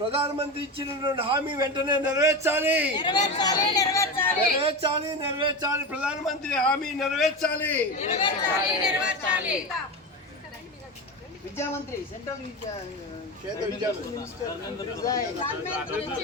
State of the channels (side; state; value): both; normal; correlation 0.22